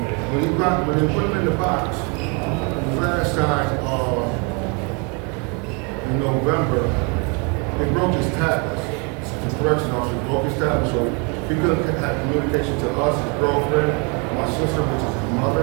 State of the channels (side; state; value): left; quieter; 33.1 dB